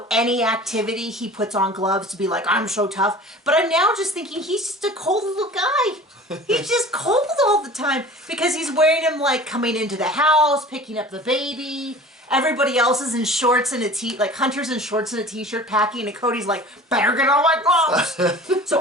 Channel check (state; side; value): normal; both; correlation 0.42